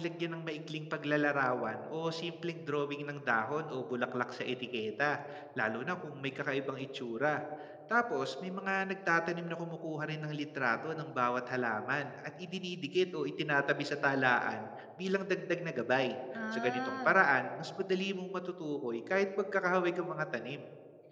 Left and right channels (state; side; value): identical; both; correlation 1.00